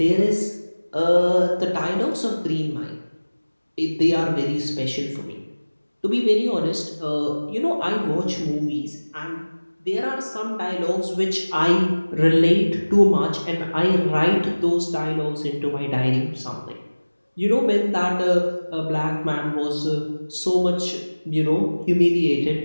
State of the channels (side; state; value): both; inverted; correlation -1.00